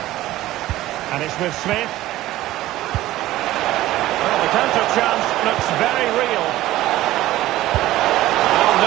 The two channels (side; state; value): left; quieter; 15.7 dB